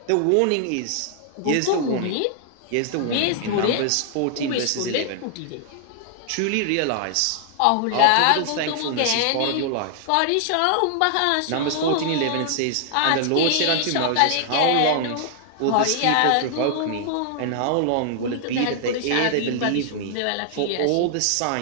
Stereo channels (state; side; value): different; both; correlation 0.00